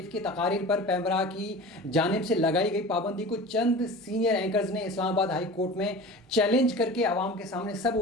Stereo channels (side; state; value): both; normal; correlation 0.36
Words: की तकारीर पर पैमरा की जानिब से लगाई गई पाबंदी को चंद सीनियर एंकर्स ने इस्लामाबाद हाई कोर्ट में चैलेंज करके आवाम के सामने सब